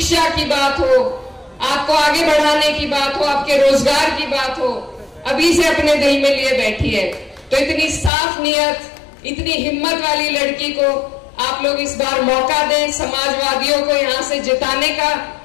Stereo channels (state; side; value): drops out; right; at 8.1 s